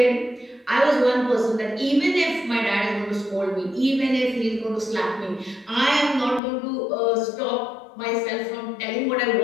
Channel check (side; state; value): right; drops out; at 6.4 s